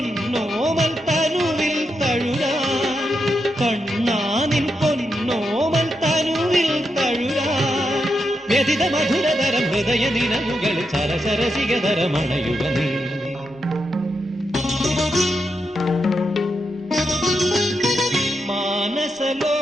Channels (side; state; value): both; normal; correlation 0.84